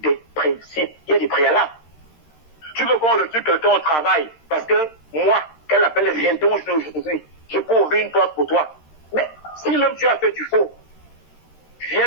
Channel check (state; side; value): late; right; 13 ms